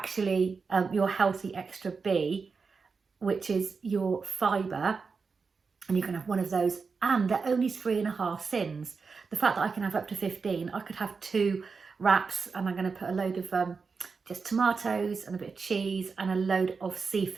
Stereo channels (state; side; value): quieter; left; 5.0 dB